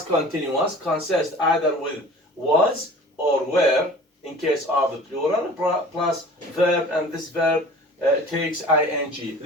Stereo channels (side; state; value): both; normal; correlation 0.43